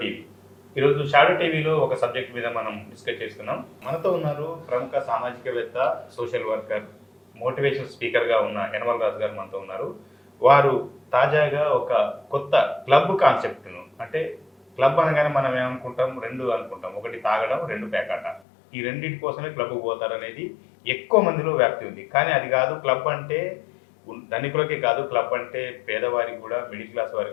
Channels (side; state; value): right; drops out; at 18.4 s